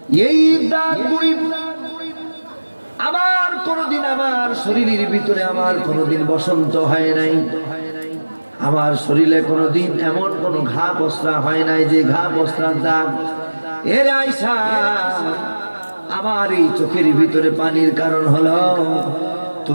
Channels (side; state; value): both; inverted; correlation -1.00